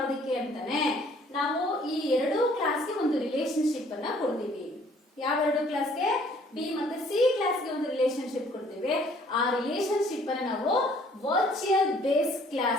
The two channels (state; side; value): normal; both; correlation 0.59